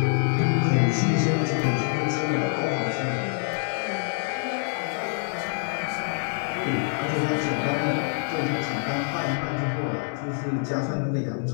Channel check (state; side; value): silent; right; digital silence